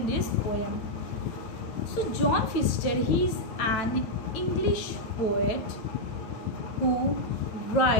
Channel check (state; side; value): late; right; 9.1 ms